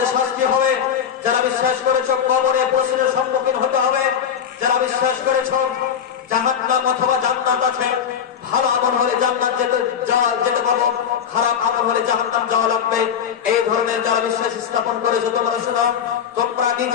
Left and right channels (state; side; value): quieter; right; 8.1 dB